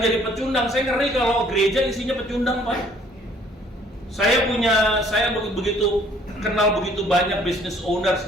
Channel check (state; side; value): normal; both; correlation 0.59